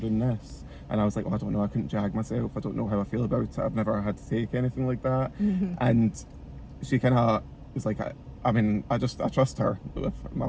doing this, and I was like, well, I don't know, I couldn't jag myself, I don't know how I feel about it, I've never had to take anything like that, and she kind of was like, I mean, I trust her with my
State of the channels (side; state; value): both; identical; correlation 1.00